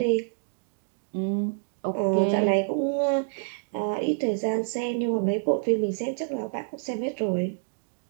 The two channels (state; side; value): silent; left; digital silence